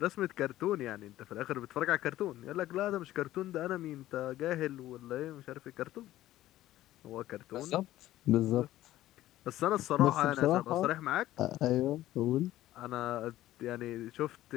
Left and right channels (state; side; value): quieter; right; 14.6 dB